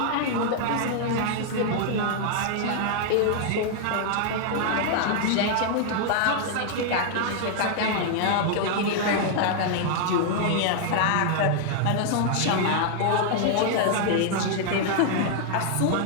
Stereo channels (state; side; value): different; both; correlation -0.01